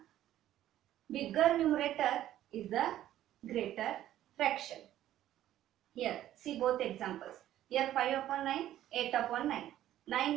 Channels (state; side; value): quieter; left; 12.8 dB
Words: bigger numerator is the greater fraction. Here see both examples. Here 5 upon 9, 8 upon 9.